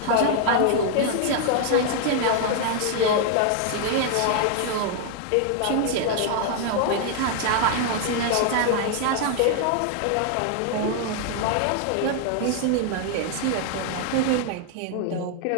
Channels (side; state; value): both; different; correlation 0.00